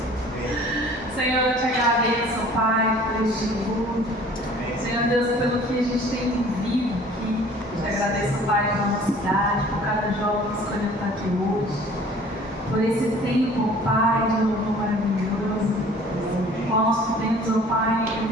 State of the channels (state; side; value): normal; both; correlation 0.50